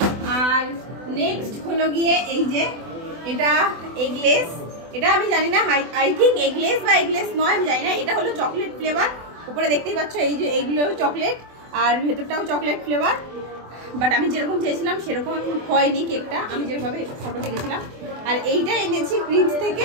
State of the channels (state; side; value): late; left; 24 ms